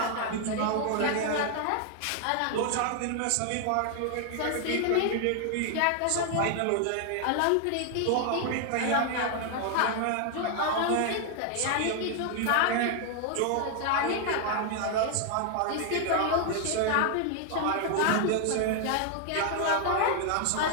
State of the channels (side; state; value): both; different; correlation 0.00